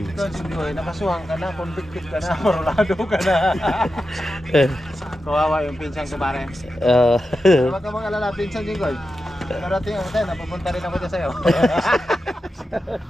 Jinggoy, nakasuhan ka na, convicted ka na, orlado ka na. Kawawa yung pinsang ko pare. Huwag ka mag-alala, pinsang Jinggoy. Narating ako tayo, napupunta rin ako dyan sa'yo.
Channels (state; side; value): normal; both; correlation 0.90